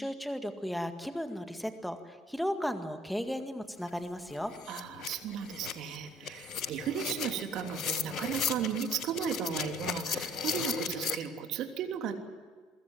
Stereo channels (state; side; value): normal; both; correlation 0.58